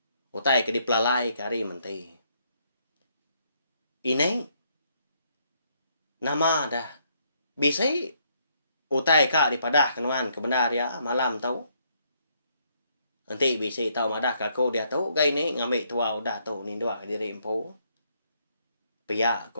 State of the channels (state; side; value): inverted; both; correlation -0.72